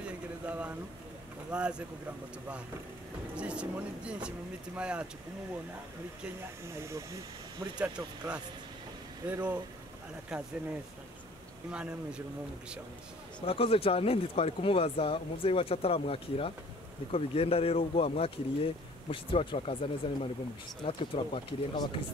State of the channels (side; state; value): both; normal; correlation 0.52